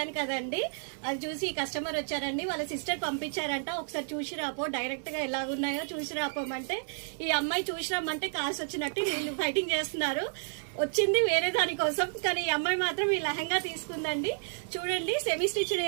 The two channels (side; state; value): left; silent; 57 dB below the other